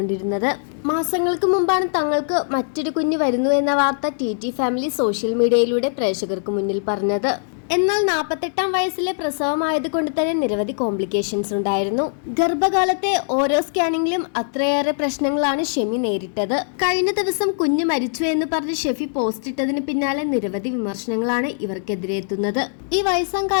മാസങ്ങൾക്ക് മുമ്പാണ് തങ്ങൾക്ക് മറ്റൊരു കുഞ്ഞ് വരുന്നു എന്ന വാർത്ത ടി ഫാമിലി സോഷ്യൽ മീഡിയയിലൂടെ പ്രേക്ഷകർക്ക് മുന്നിൽ പറഞ്ഞത്. എന്നാൽ 48-ാം വയസ്സിലെ പ്രസവമായതുകൊണ്ട് തന്നെ നിരവധി കോംപ്ലിക്കേഷൻസ് ഉണ്ടായിരുന്നു. ഗർഭകാലത്തെ ഓരോ സ്കാനിങ്ങിലും അത്രയേറെ പ്രശ്നങ്ങളാണ് ഷെമി നേരിട്ടത്. കഴിഞ്ഞ ദിവസം കുഞ്ഞ് മരിച്ചു എന്ന് പറഞ്ഞ് ഷെഫി പോസ്റ്റ് ഇട്ടതിന് പിന്നാലെ നിരവധി വിമർശനങ്ങളാണ് ഇവർക്കെതിരെ എത്തുന്നത്. ഈ വയസ്സാം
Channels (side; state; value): right; silent; digital silence